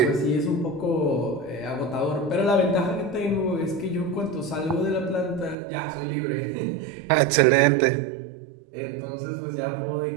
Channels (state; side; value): drops out; left; at 5.6 s